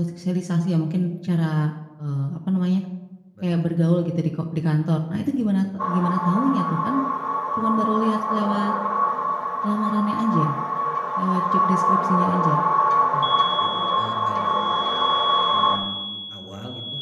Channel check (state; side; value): identical; both; correlation 1.00